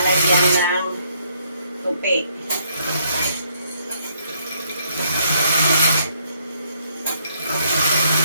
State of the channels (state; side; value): inverted; both; correlation -0.69